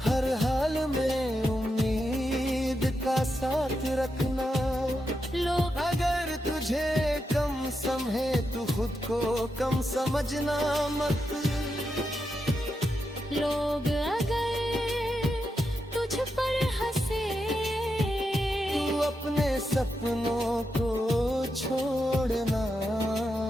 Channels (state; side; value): normal; both; correlation 0.86